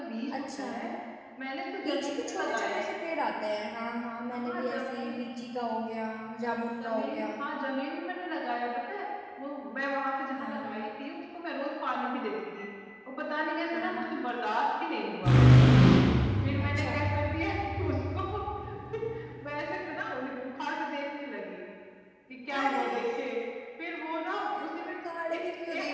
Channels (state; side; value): identical; both; correlation 1.00